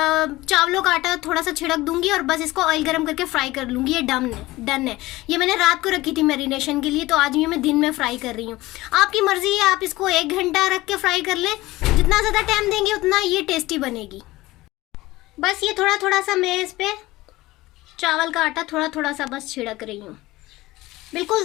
चावलों का आटा थोड़ा सा छिड़क दूंगी और बस इसको ऑयल गरम करके फ्राई कर लूंगी। ये डन है। ये मैंने रात को रखी थी मैरिनेशन के लिए, तो आज ये मैं दिन में फ्राई कर रही हूँ। आपकी मर्जी है, आप इसको 1 घंटा रख के फ्राई कर लें। जितना ज्यादा टाइम देंगे उतना ये टेस्टी बनेगी। बस ये थोड़ा थोड़ा सा मैं इस पे चावल का आटा थोड़ा थोड़ा सा बस छिड़क रही हूँ। बिल्कुल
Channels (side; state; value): right; quieter; 18.8 dB